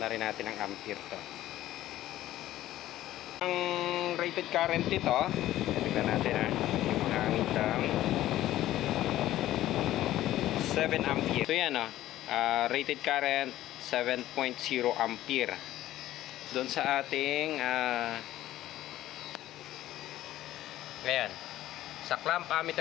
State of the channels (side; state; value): right; quieter; 14.2 dB